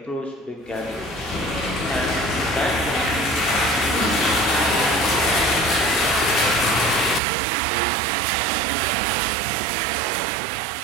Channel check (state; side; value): drops out; left; at 7.2 s